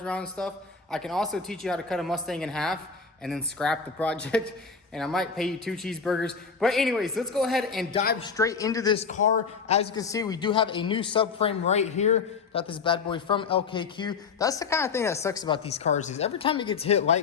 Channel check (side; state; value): right; quieter; 5.4 dB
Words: around and stuff, I can also teach you how to cut a Mustang in half and then scrap the project. And I might pay you 2 cheeseburgers. But anyways, let's go ahead and dive straight into this car. As you can see, we do have a new subframe right here. Got this bad boy from LKQ. That's the kind of thing that sucks about these cars, is every time it gets hit